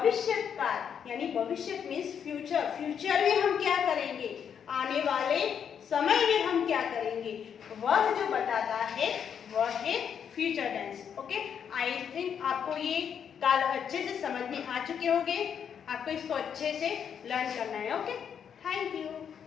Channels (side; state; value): right; quieter; 7.9 dB